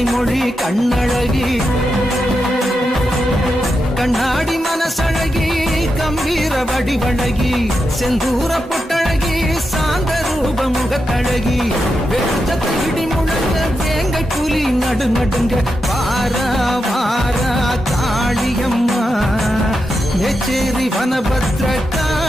மொழி கண்ணழகி கண்ணாடி மனசழகி கம்பீர வடிவழகி செந்தூர பொட்டழகி சாந்த ரூப முகத்தழகி வெச்சத்தை இடி முழங்க வேங்கை புலி நடுநடுங்க வாரா வாரா காளியம்மா மேச்சேரி வனபத்ர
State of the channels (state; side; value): normal; both; correlation 0.87